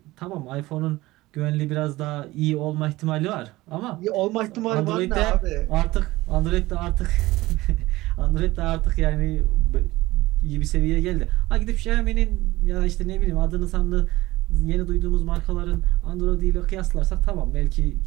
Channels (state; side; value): quieter; left; 18.7 dB